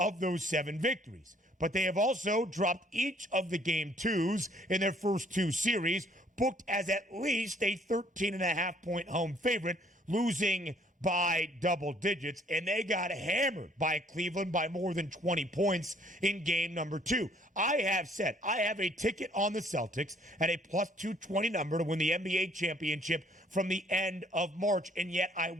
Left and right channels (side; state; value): both; normal; correlation 0.61